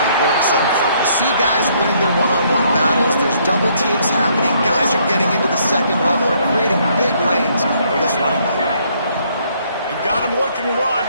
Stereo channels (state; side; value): inverted; both; correlation -0.68